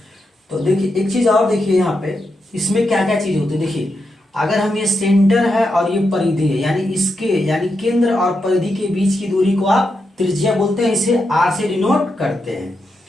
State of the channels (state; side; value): normal; both; correlation 0.85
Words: तो देखिए एक चीज और देखिए यहाँ पे इसमें क्या क्या चीज होती है। देखिए अगर हम ये सेंटर है और ये परिधि है, यानी केंद्र और परिधि के बीच की दूरी को आप त्रिज्या बोलते हैं, इसे आर से डिनोट करते हैं।